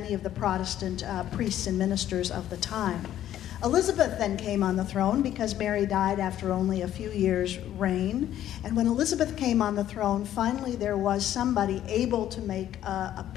of the Protestant priests and ministers of the time. Elizabeth then came on the throne because Mary died after only a few years' reign. And when Elizabeth came on the throne, finally there was somebody able to make a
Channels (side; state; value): right; quieter; 11.9 dB